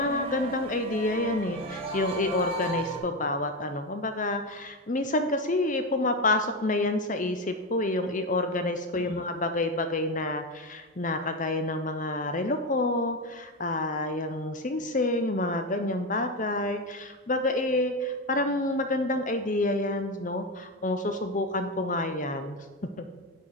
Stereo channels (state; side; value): normal; both; correlation 0.14